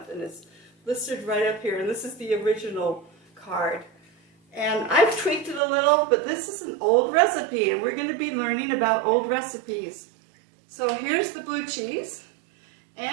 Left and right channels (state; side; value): drops out; left; at 5.6 s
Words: And it's listed right up here. And this is the original card. And I've tweaked it a little, but this is an old recipe. And we're going to be learning about old recipes. So here's the blue cheese.